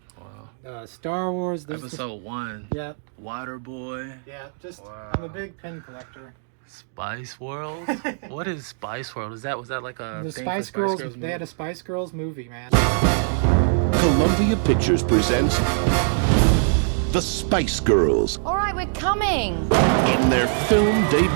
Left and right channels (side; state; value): left; silent; digital silence